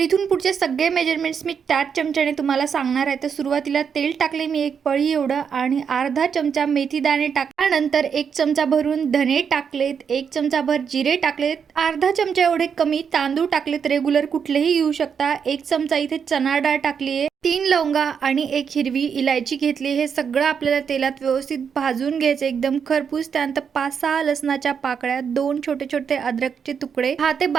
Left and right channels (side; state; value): left; quieter; 6.9 dB